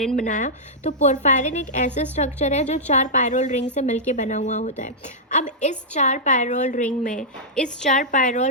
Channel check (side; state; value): both; normal; correlation -0.10